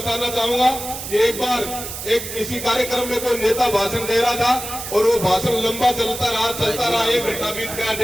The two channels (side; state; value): right; noise; hiss, 8 dB below the sound